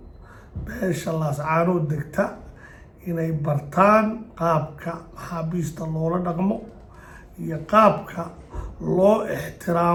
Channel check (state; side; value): identical; both; correlation 1.00